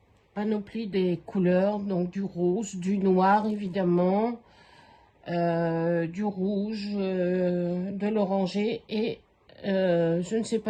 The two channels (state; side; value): identical; both; correlation 1.00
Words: Panoplie des couleurs. Donc, du rose, du noir, évidemment. Du rouge, de l'oranger. Et je ne sais